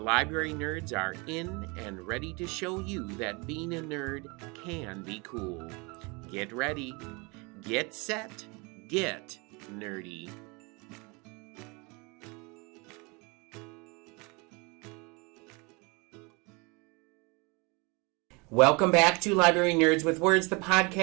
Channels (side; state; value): left; quieter; 28.7 dB